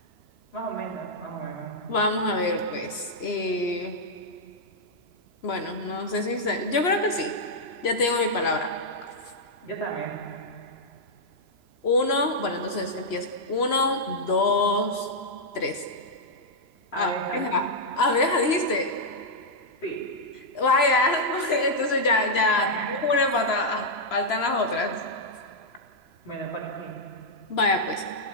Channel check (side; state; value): right; late; 3.0 ms